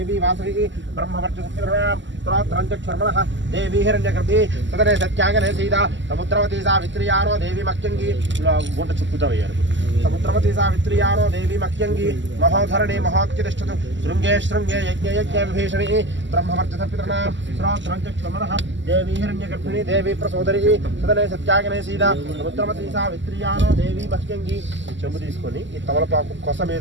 वासवी ब्रह्मवर्चसुरां स्तोत्रञ्चक्षर्मणः देवी हिरण्यगर्भी सदने सत्यागने सीता समुद्रवती सावित्र्यारो देवी मक्यङ्गी गुंड चुक्कुतवय्यारु समुद्रवती सावित्र्यारो देवी मक्यङ्गी महोधरणी महोत्तिष्ठतु शृङ्गे शृङ्गे यज्ञे यज्ञे विभीषणी ब्रह्मवर्चसपितॄणां स्तोत्रञ्चक्षर्मणः देवी हिरण्यगर्भिणी देवी प्रसोदरी सदने सत्यागने सीता समुद्रवती सावित्र्यारो देवी मक्यङ्गी చెంబు తీసుకొని ఈ తమలపాకు కొస మీద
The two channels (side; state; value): left; late; 0.54 ms